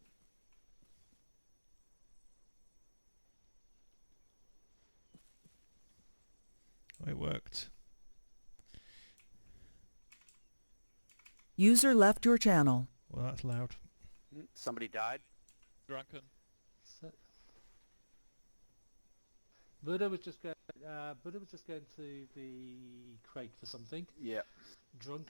Oh, it worked. User left your channel. Well, that's loud. Somebody died? Drunken. So, Buddha was just going to the crate for something. Yeah.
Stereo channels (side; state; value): both; inverted; correlation -1.00